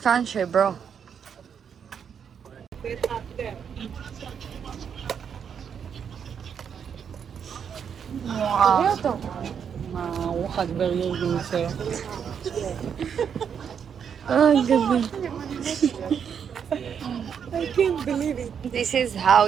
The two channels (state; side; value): quieter; left; 7.5 dB